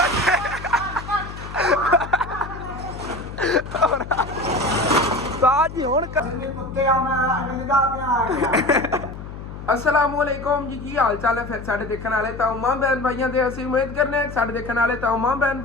असलामुअलैकुम जी की हाल चाल है फिर साढ़े देखने वाले तमाम बहन भाइयों से असं उम्मीद करने साढ़े देखने वाले तमाम बहन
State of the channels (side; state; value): left; noise; hum, 11 dB below the sound